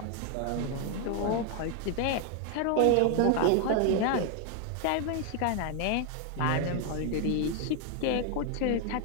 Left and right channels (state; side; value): different; both; correlation 0.00